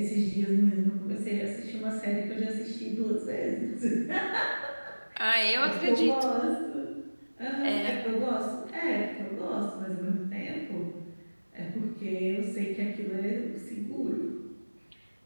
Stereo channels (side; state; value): both; inverted; correlation -1.00